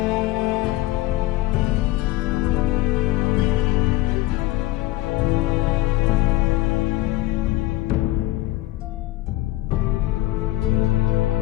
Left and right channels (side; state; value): right; quieter; 17.2 dB